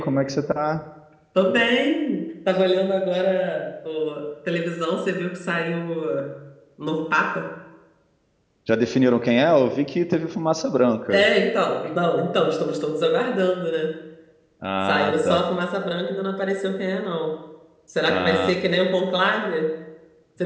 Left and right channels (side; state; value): both; identical; correlation 1.00